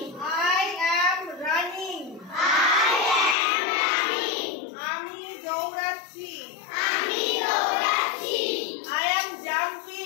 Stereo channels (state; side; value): drops out; right; at 3.4 s